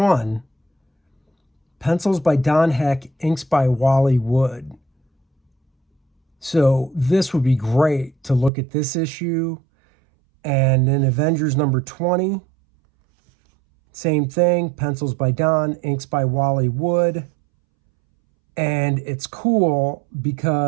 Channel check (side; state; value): left; drops out; at 8.5 s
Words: Pencils by Don Heck, inks by Wally Wood. So this would be great to look at this issue. And then Avengers number 20. Same thing, pencils by Don, inks by Wally Wood. And it's cool